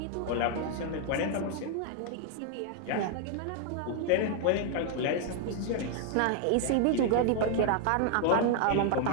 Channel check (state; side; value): different; both; correlation 0.00